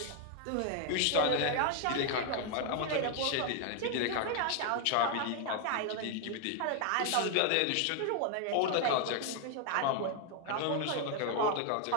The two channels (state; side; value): different; both; correlation 0.00